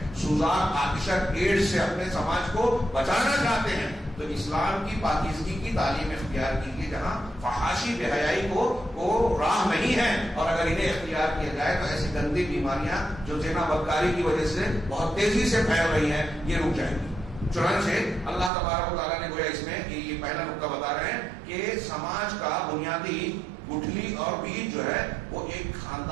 سوزان آتشک ایڈز سے اپنے سماج کو بچانا چاہتے ہیں, تو اسلام کی پاکیزگی کی تعلیم اختیار کیجیے, جہاں فحاشی بے حیائی کو راہ نہیں ہے. اور اگر انہیں اختیار کیا جائے تو ایسی گندی بیماریاں جو زنا بدکاری کی وجہ سے بہت تیزی سے پھیل رہی ہیں, یہ رک جائیں گی. چنانچہ اللہ تبارک و تعالیٰ نے گویا اس میں یہ پہلا نقطہ بتا رہے ہیں کہ سماج کا بنیادی گٹھلی اور بیج جو ہے وہ ایک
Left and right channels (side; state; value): left; drops out; at 18.5 s